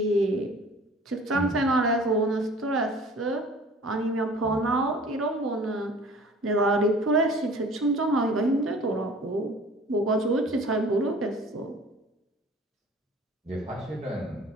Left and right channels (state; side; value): normal; both; correlation 0.47